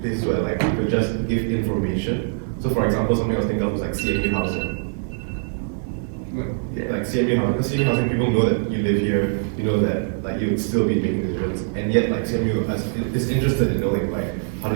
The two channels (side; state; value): left; silent; 56 dB below the other